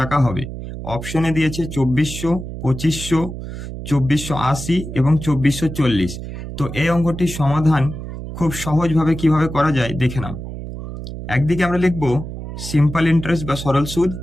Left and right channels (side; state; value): right; noise; hum, 9 dB below the sound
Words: হবে। অপশনে দিয়েছে 2400, 2500, 2480 এবং 2440। তো এই অঙ্কটির সমাধান খুব সহজভাবে কিভাবে করা যায় দেখে নাও। একদিকে আমরা লিখবো সিম্পল ইন্টারেস্ট বা সরল সুদ,